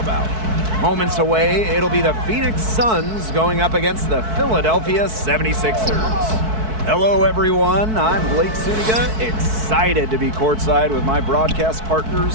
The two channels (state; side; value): late; left; 4.6 ms